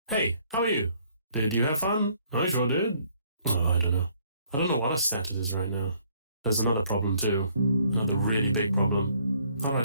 Hey, how are you? Did you have fun? I sure did. Oh, I don't know. I don't know what her status is right now. There's another problem too. Another really big problem. How do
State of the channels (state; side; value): inverted; both; correlation -0.65